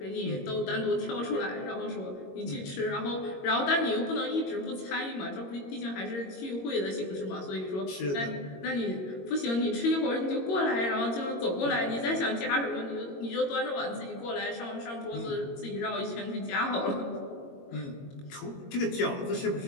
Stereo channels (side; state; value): right; late; 22 ms